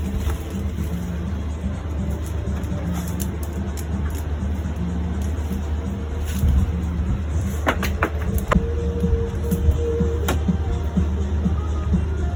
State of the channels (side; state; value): both; identical; correlation 1.00